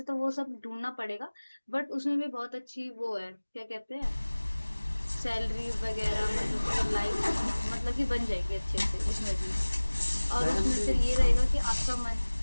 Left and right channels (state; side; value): inverted; both; correlation -1.00